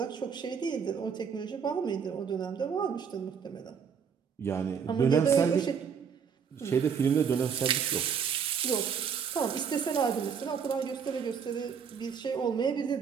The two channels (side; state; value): left; quieter; 6.8 dB